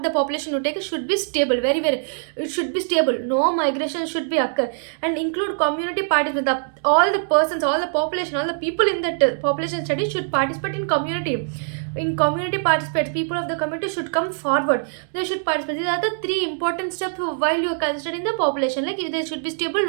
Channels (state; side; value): silent; left; digital silence